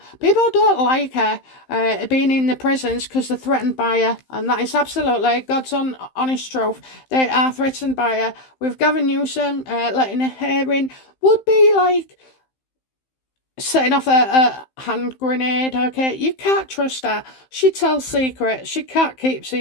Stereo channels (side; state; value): right; late; 15 ms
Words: don't like her being in the prisons because they're threatened by her, and that is absolutely God's honest truth. They are threatened by her. With Gavin Newsom letting her in would be like setting off a hand grenade. Okay, you can't trust her. She tells secrets. She can't keep